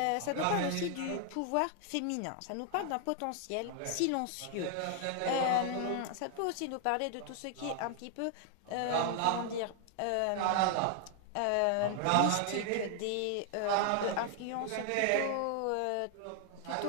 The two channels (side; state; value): both; different; correlation 0.00